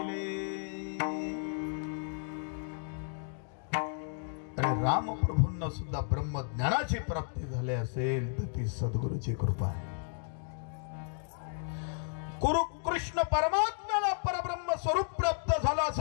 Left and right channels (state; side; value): silent; right; digital silence